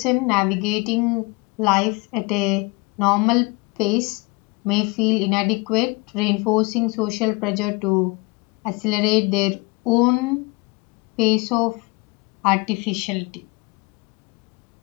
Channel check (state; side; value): quieter; right; 27.0 dB